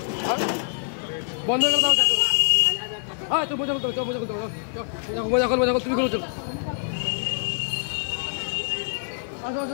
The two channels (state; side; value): silent; right; 56 dB below the other